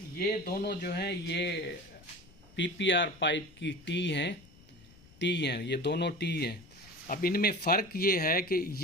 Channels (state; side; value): noise; left; rumble, 24 dB below the sound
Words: ये दोनों जो हैं ये पीपीआर पाइप की टी हैं, ये दोनों टी हैं। अब इनमें फ़र्क ये है कि